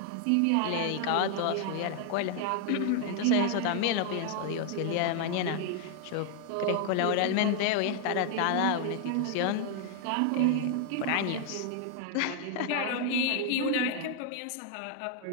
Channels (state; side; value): different; both; correlation 0.00